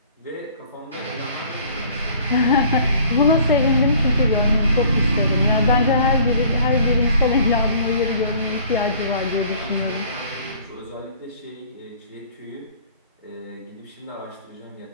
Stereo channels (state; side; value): inverted; both; correlation -0.53